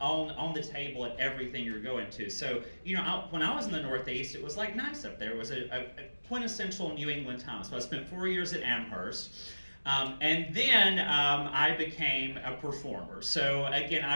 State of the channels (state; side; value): inverted; both; correlation -1.00